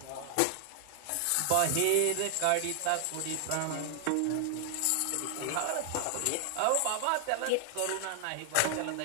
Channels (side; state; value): both; different; correlation 0.00